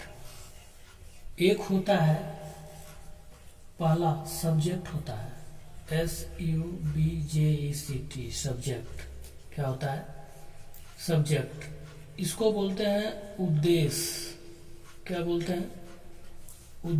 एक होता है, पहला सब्जेक्ट होता है, SUBJECT, सब्जेक्ट। क्या होता है? सब्जेक्ट। इसको बोलते हैं उद्देश्य। क्या बोलते हैं?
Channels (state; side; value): identical; both; correlation 1.00